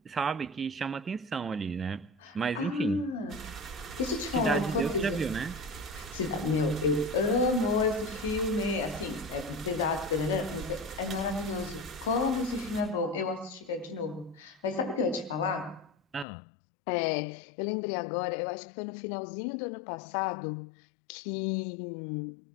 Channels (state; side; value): drops out; right; at 16.2 s